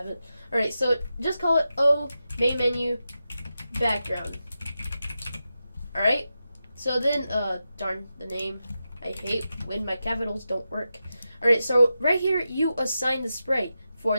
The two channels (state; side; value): inverted; both; correlation -0.90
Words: it. All right, so just call it O main menu background. All right. So then, darn the name. I hate when my capitals don't work. All right, so right here you assign the sprite